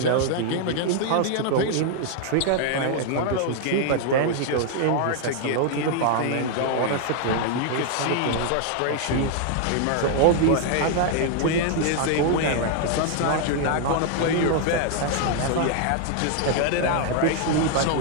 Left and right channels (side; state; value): both; different; correlation 0.00